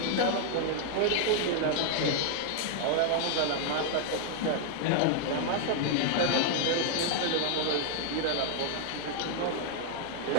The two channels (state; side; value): different; both; correlation 0.00